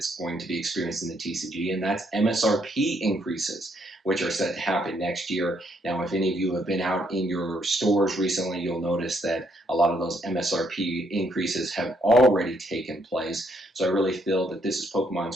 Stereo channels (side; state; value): both; normal; correlation 0.72